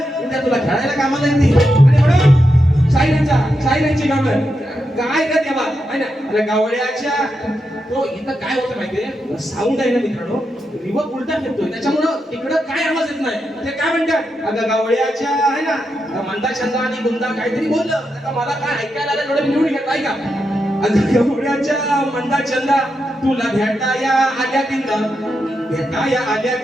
उद्या तुला खेळायला कामाला येते. आणि म्हणून शाहिरांची कामं काय का तेव्हा आहे ना. अरे गावड्याच्या तो इथं काय होतं माहितीये, साऊंड आहे ना मित्रांनो, रिवर्ब उलटा फिरतोय, त्याच्यामुळं तिकडं काय आवाज येत नाही. ते काय म्हणतात, अगं गावड्याच्या आहे ना मंदा छंदा आणि गुंदा काहीतरी बोललं, आता मला काय ऐकायला आलं थोडं निवडून घेत आहे का. अगं गावड्याच्या मंदा छंदा तुला भेटाया आल्या तिंदा, भेटाया आल्या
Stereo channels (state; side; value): normal; both; correlation 0.85